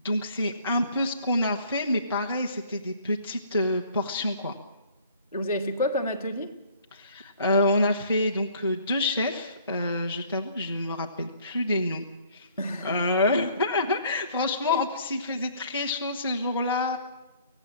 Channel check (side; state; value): both; inverted; correlation -0.57